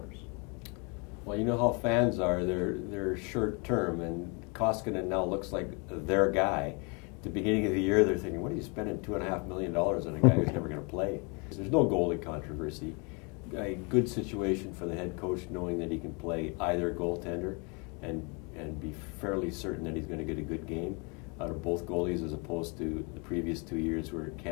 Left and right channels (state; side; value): quieter; right; 32.7 dB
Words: Well, you know how fans are. They're short term, and Koskinen now looks like their guy. At the beginning of the year, they're thinking, what are you spending $2.5 million on a guy who's never going to play? There's no goalie controversy. A good situation for the head coach, knowing that he can play either goaltender and be fairly certain that he's going to get a good game out of both goalies, as opposed to the previous 2 years where